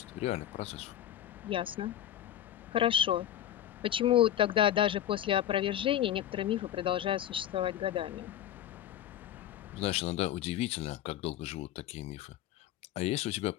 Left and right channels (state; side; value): quieter; right; 11.4 dB